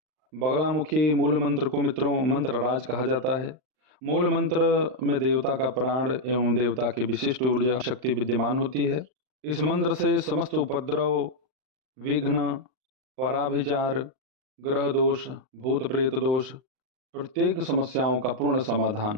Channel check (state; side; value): late; left; 39 ms